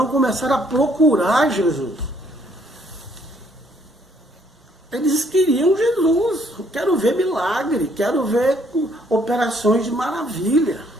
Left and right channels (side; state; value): both; normal; correlation 0.66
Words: começaram a procurar Jesus. Eles queriam Jesus. Quero ver milagre, quero ver operações de maravilha,